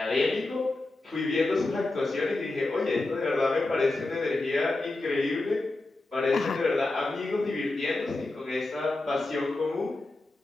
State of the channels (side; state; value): right; quieter; 3.0 dB